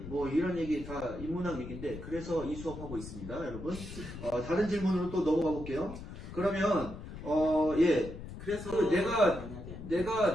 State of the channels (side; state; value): left; noise; rumble, 11 dB below the sound